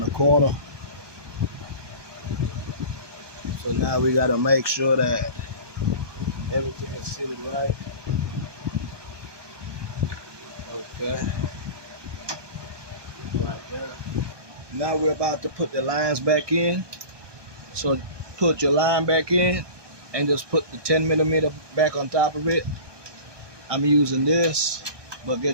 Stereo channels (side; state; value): left; late; 1.2 ms